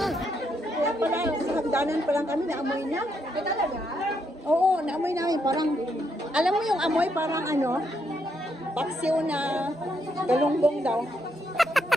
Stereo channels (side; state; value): both; normal; correlation 0.77